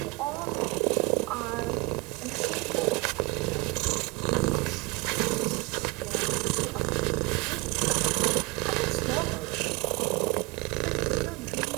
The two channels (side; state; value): left; quieter; 26.6 dB